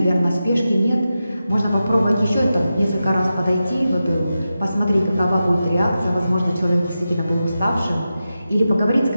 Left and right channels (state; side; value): inverted; both; correlation -0.91